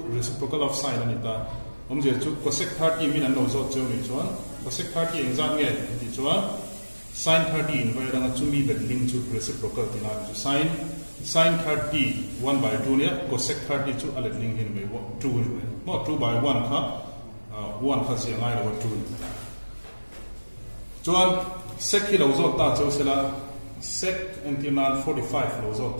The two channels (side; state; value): both; inverted; correlation -1.00